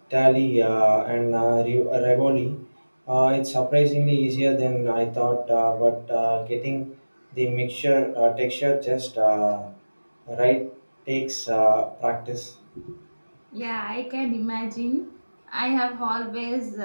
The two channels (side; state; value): both; inverted; correlation -1.00